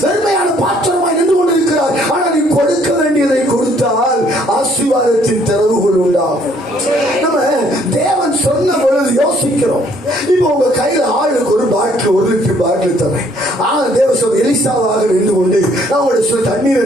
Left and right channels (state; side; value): normal; both; correlation 0.64